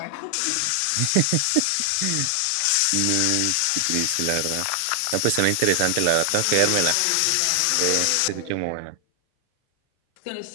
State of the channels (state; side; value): different; both; correlation 0.00